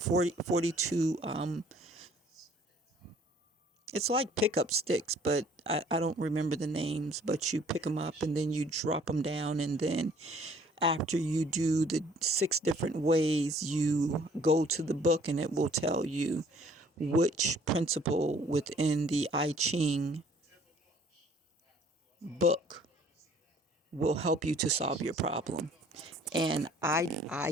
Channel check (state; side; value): normal; both; correlation 0.57